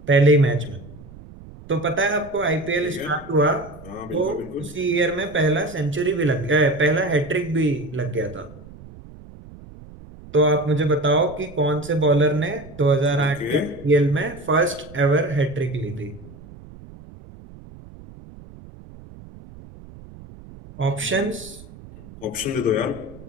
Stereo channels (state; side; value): noise; right; rumble, 19 dB below the sound